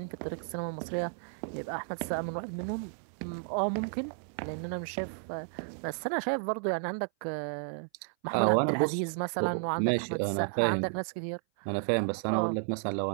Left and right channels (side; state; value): left; silent; 56 dB below the other